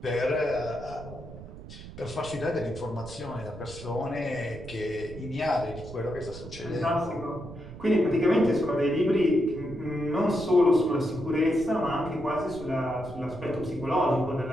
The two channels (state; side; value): noise; right; rumble, 14 dB below the sound